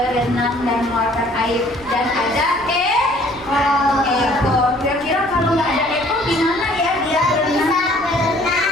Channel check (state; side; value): noise; right; rumble, 22 dB below the sound